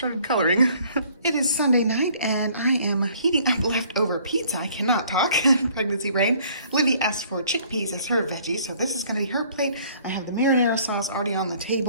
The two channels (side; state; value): both; inverted; correlation -0.58